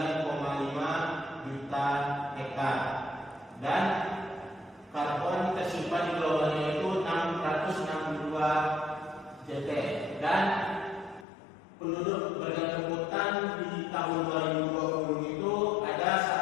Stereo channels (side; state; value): right; drops out; at 11.2 s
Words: juta hektar dan karbon tersimpan di globalnya itu 662 JT dan penduduk bergantung hutan di tahun 2020 itu